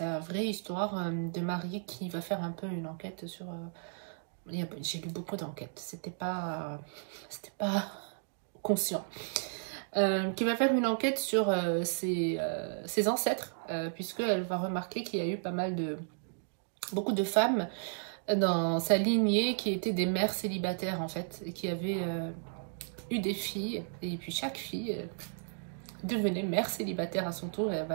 vraie histoire de Marie qui va faire un peu une enquête sur... j'ai lu beaucoup d'enquêtes, c'était pas conscient. Qui va faire une enquête sur ses ancêtres, puisqu'elle va remarquer qu'il y a eu beaucoup de femmes dans sa lignée qui étaient des mères célibataires en fait, et qui avaient eu des filles, et puis chaque fille devenait mère célibataire à son tour, et elle va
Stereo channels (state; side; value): silent; left; digital silence